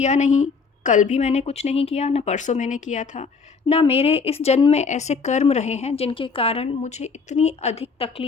नहीं, कल भी मैंने कुछ नहीं किया, ना परसों मैंने किया था, ना मेरे इस जन्म में ऐसे कर्म रहे हैं जिनके कारण मुझे इतनी अधिक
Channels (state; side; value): quieter; right; 5.0 dB